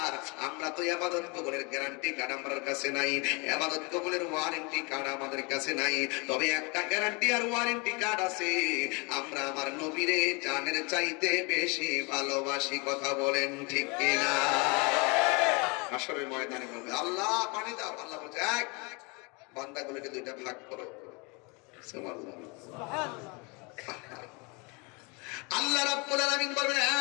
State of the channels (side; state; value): right; quieter; 29.3 dB